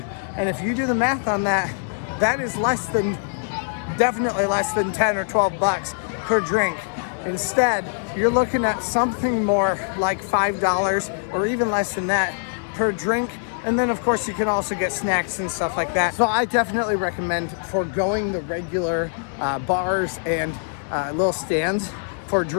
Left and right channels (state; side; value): silent; right; digital silence